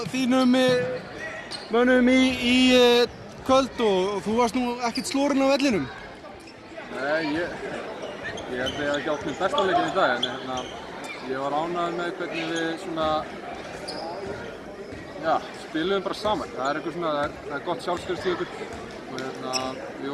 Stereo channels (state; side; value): identical; both; correlation 1.00